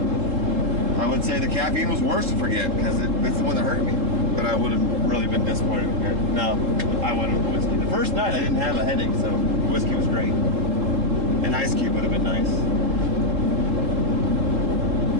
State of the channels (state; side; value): late; left; 3.8 ms